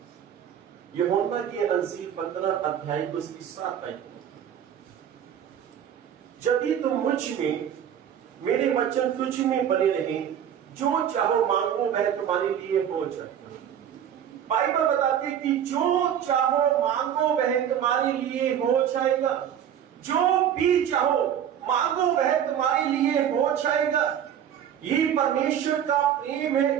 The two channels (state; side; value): quieter; left; 9.5 dB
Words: यूहन्ना की इंजील 15 अध्याय उसकी 7 आयत, यदि तुम मुझ में, मेरे वचन तुझ में बने रहे, जो चाहो मांगो वह तुम्हारे लिए हो जाए। बाइबल बताती है कि जो चाहो मांगो वह तुम्हारे लिए हो जाएगा, जो भी चाहो मांगो वह तुम्हारे लिए हो जाएगा। ये परमेश्वर का प्रेम है।